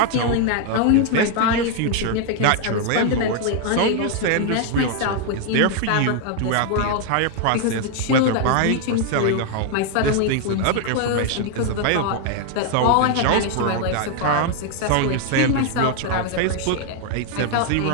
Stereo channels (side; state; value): both; different; correlation 0.00